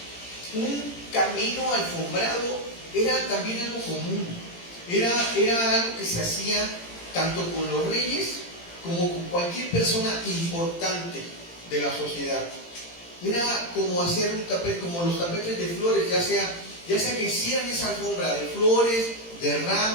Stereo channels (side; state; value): right; late; 18 ms